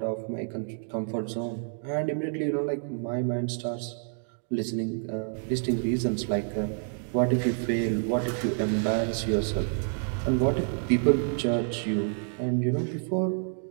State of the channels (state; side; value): silent; left; 59 dB below the other